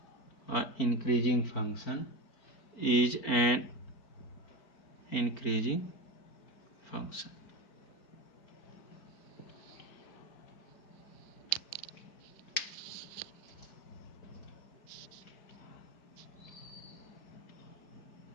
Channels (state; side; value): late; right; 4.3 ms